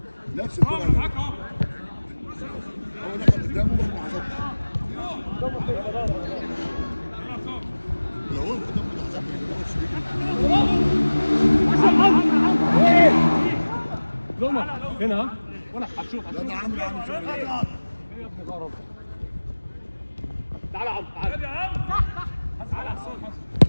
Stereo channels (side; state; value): both; inverted; correlation -1.00